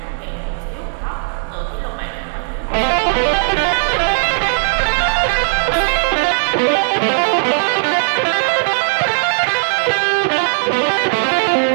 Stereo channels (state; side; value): silent; left; digital silence